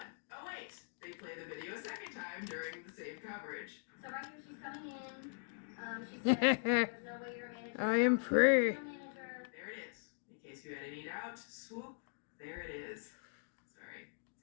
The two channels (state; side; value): silent; right; digital silence